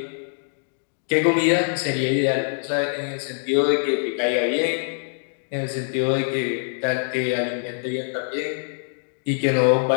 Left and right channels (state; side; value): silent; right; digital silence